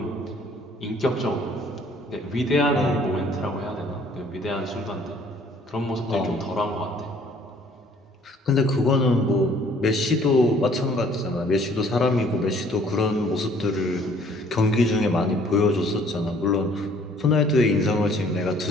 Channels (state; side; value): normal; both; correlation 0.58